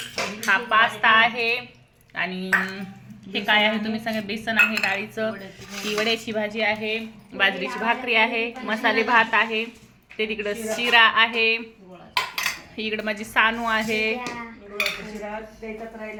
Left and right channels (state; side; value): identical; both; correlation 1.00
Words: हा पास्ता आहे आणि हे काय आहे तुम्ही सांगा. बेसन आहे डाळीचं, ही वड्याची भाजी आहे, बाजरीची भाकरी आहे, मसाले भात आहे, ते तिकडं शिरा आहे, इकडं माझी सानू आहे.